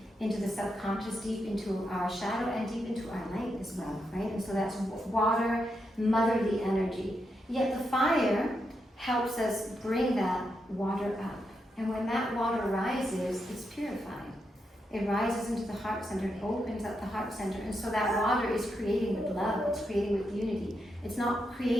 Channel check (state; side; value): normal; both; correlation 0.83